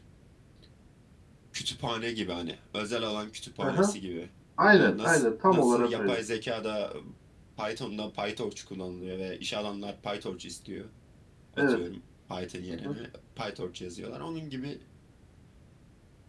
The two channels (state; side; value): identical; both; correlation 1.00